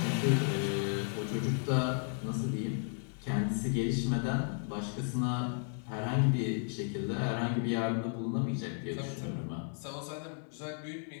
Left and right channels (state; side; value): silent; right; 55 dB below the other